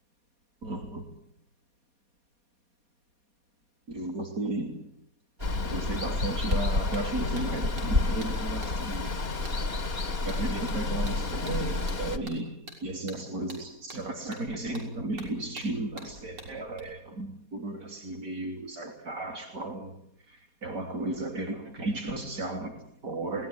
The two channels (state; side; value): late; left; 4.2 ms